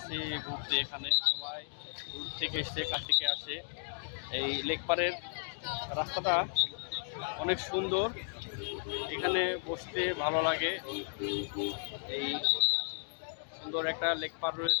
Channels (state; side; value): silent; right; digital silence